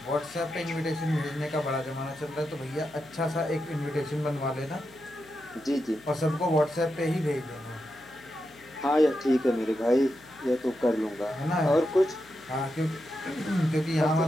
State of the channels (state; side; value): noise; left; hum, 25 dB below the sound